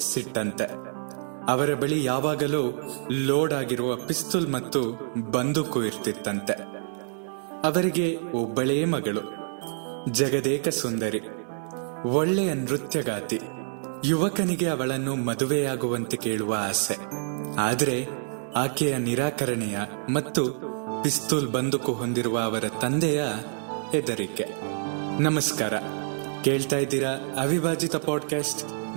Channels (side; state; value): left; silent; digital silence